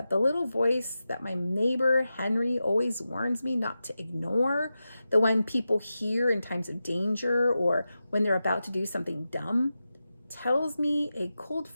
the little voice that my neighbor Henry always warns me not to ignore, the one people hear in times of danger or when they're about to do something dumb, tells me a cold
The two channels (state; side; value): inverted; both; correlation -0.92